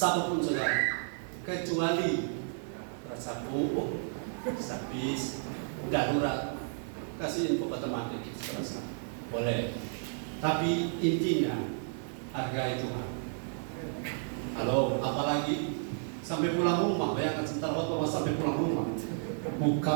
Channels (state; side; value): silent; left; digital silence